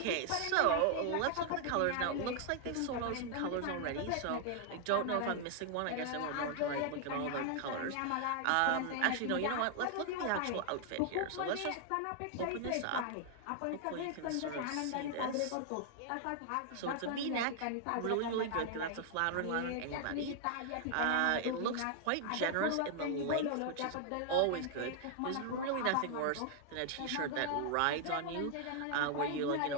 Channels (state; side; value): different; both; correlation 0.00